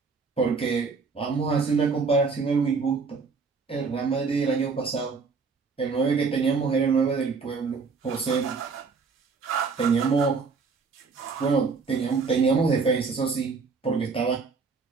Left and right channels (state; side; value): quieter; left; 4.8 dB